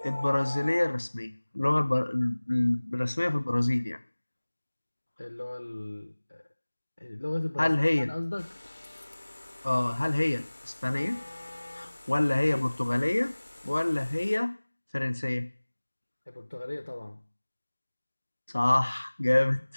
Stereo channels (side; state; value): both; inverted; correlation -1.00